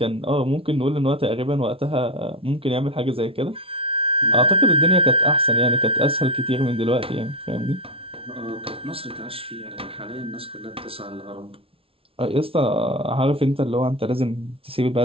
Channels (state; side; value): late; left; 0.26 ms